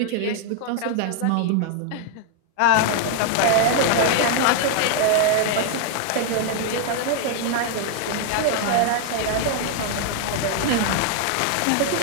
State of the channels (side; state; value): both; different; correlation 0.00